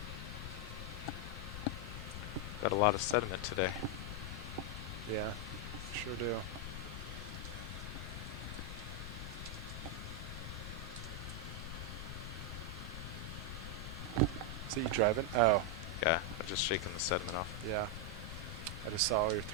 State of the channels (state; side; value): noise; left; rumble, 6 dB below the sound